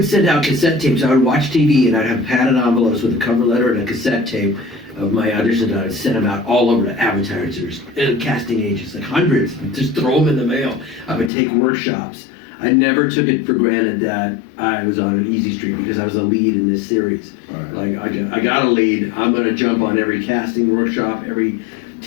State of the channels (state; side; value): drops out; right; at 11.3 s